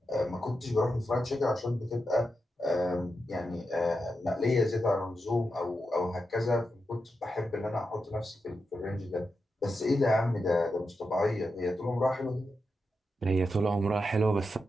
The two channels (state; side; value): normal; both; correlation 0.87